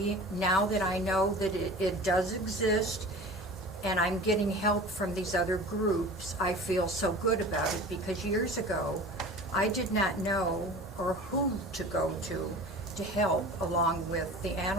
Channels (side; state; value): both; normal; correlation 0.38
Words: now that I know that it does exist, and I'm getting help from these other groups, I feel so good about it, because years ago, I did not know or who to go to help, along with the